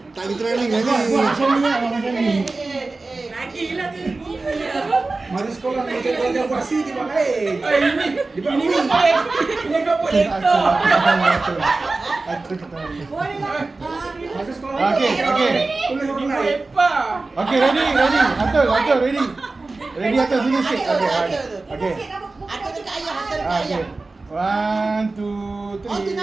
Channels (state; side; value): quieter; left; 3.5 dB